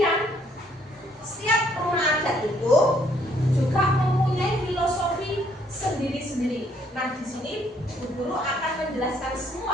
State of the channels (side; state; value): both; normal; correlation 0.67